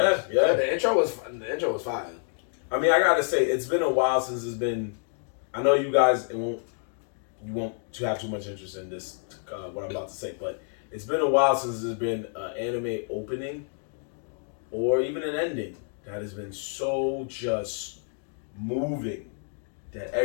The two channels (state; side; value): silent; right; 59 dB below the other